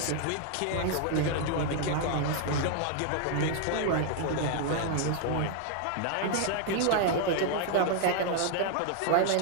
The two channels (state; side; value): different; both; correlation 0.00